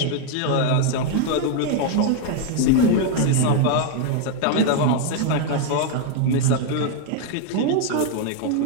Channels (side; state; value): both; different; correlation 0.00